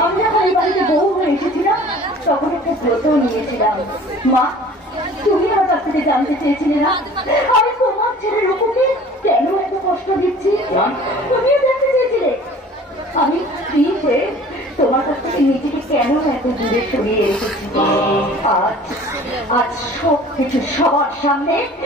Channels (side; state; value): both; normal; correlation 0.47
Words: আমি যখন এই বাড়িতে বউ হয়ে এসেছিলাম তখন একটা ব্রত নিয়েছিলাম। মা, তুমি আমার কাছ থেকে জানতে চেয়েছিলে না আমি তোমার ছেলের রূপকে কেন এত কষ্ট দিচ্ছি? তুমিও জানতে চেয়েছিলে আমি স্ত্রী হয়ে তোমার কাছ থেকে নিজেকে কেন এত দূরে সরিয়ে রেখেছি। আজ আজ সব কিছু সবার সামনে